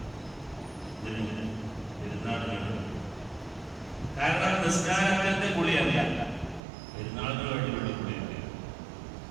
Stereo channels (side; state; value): left; drops out; at 6.6 s